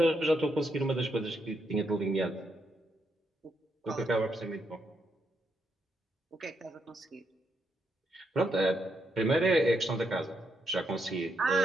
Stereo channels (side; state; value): both; normal; correlation 0.79